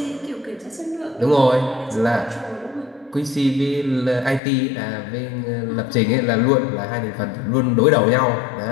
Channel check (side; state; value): right; drops out; at 4.4 s